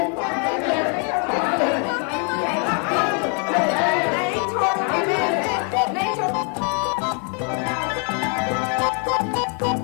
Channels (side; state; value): right; quieter; 39.4 dB